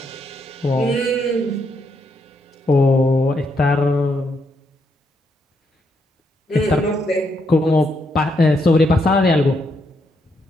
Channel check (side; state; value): both; normal; correlation 0.78